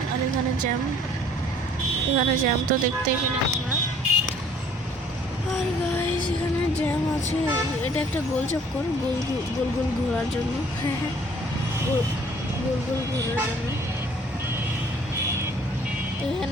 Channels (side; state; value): both; normal; correlation 0.57